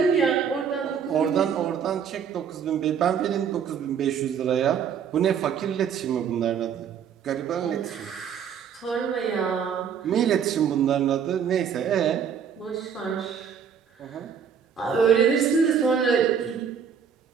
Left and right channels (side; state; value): left; quieter; 7.4 dB